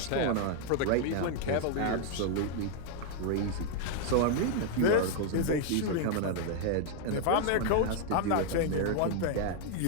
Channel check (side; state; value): both; different; correlation 0.00